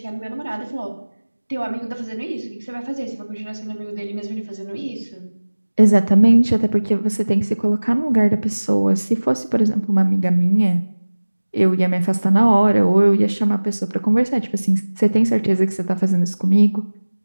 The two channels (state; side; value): inverted; both; correlation -1.00